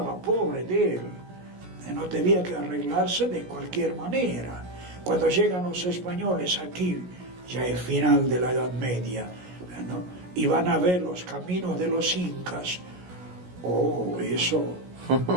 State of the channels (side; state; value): left; late; 17 ms